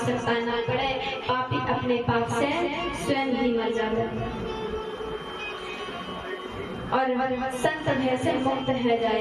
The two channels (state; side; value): identical; both; correlation 1.00